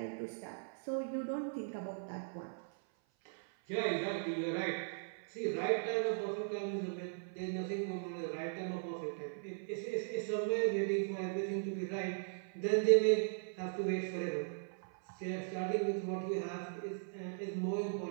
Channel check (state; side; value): silent; left; 52 dB below the other